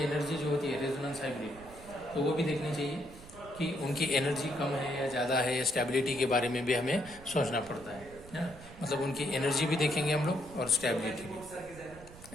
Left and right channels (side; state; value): right; noise; rumble, 18 dB below the sound